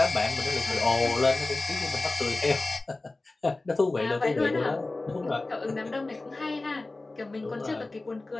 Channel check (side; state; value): right; quieter; 3.1 dB